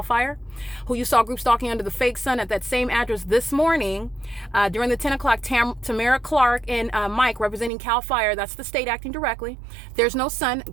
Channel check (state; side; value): drops out; left; at 7.7 s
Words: FIRE, who you saw group stalking under the fake sun at that same address this morning during the 10 o'clock. Tamara Clark and Mike representing CAL FIRE, that's the state acting directly. There's no sun.